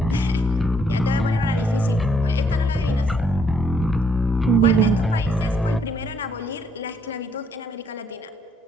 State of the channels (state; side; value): normal; both; correlation 0.70